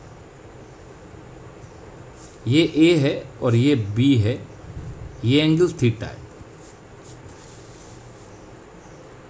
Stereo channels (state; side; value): identical; both; correlation 1.00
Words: ये A है और ये B है, ये एंगल थीटा है।